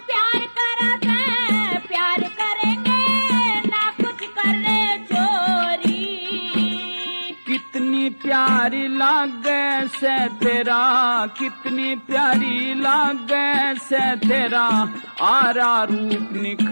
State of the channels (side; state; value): both; inverted; correlation -1.00